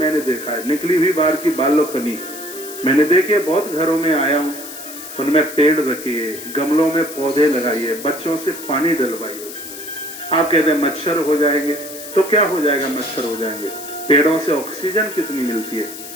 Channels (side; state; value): left; noise; hiss, 12 dB below the sound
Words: देखा है, निकली हुई बाहर की बालकनी मैंने देखी है, बहुत घरों में आया हूँ। उनमें पेड़ रखिए, गमलों में पौधे लगाइए, बच्चों से पानी डलवाइए। आप कहते हैं मच्छर हो जाएंगे, तो क्या हो जाएगा? मच्छर हो जाएंगे। पेड़ों से ऑक्सीजन कितनी मिलती है।